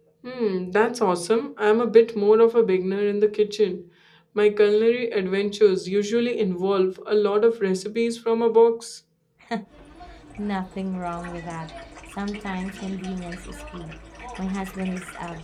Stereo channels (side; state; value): both; identical; correlation 1.00